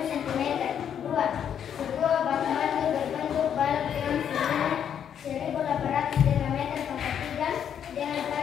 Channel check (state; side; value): quieter; right; 8.7 dB